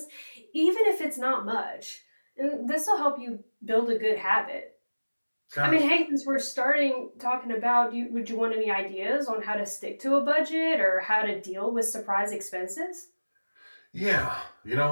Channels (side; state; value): both; inverted; correlation -1.00